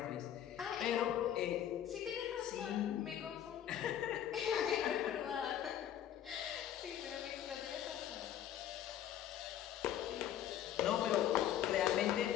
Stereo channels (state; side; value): quieter; right; 10.7 dB